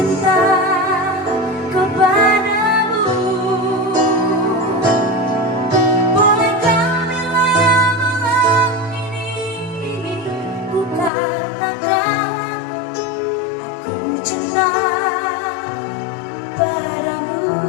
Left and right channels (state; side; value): drops out; right; at 11.1 s